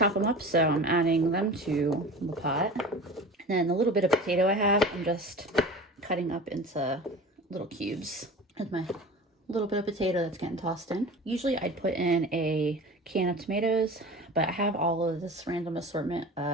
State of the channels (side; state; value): both; normal; correlation 0.36